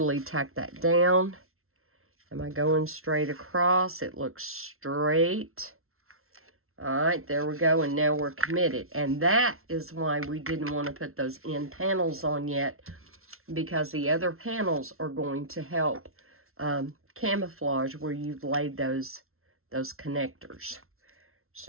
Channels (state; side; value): late; left; 0.62 ms